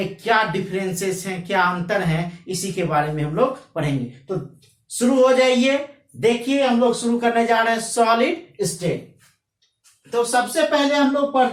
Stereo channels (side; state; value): both; identical; correlation 1.00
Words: क्या डिफरेंसेस हैं, क्या अंतर हैं, इसी के बारे में हम लोग पढ़ेंगे। तो शुरू हो जाइए। देखिए, हम लोग शुरू करने जा रहे हैं सॉलिड स्टेट। तो सबसे पहले हम लोग